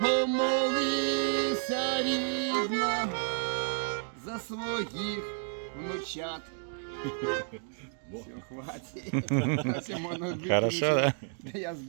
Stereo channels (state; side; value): silent; left; 57 dB below the other